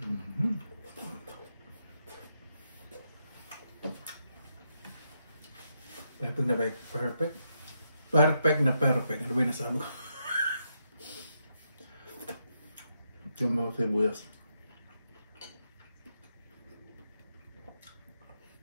Perfect na perfect. Ano ba yung nasabi ko? Yung mga sibuyas.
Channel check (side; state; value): both; inverted; correlation -0.81